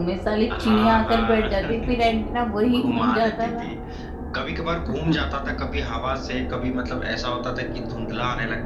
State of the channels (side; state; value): both; identical; correlation 1.00